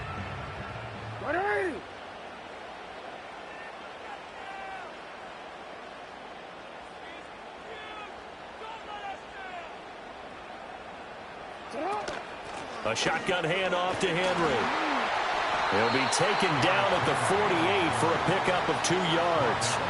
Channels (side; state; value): both; identical; correlation 1.00